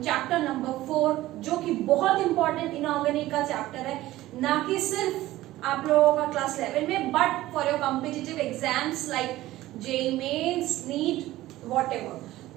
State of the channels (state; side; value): quieter; left; 16.1 dB